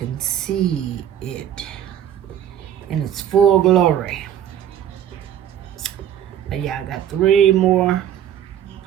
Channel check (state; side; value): quieter; left; 10.3 dB